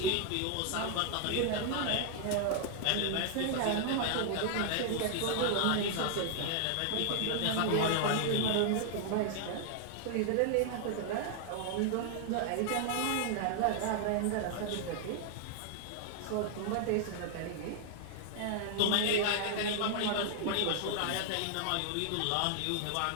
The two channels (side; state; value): both; different; correlation -0.01